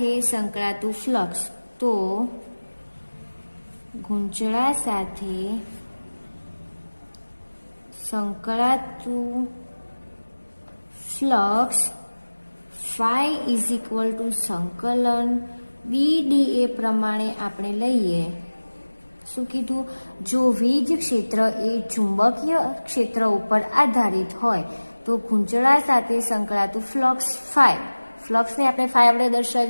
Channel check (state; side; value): inverted; both; correlation -1.00